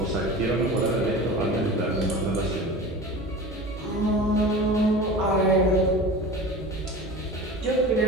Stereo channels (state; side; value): normal; both; correlation 0.34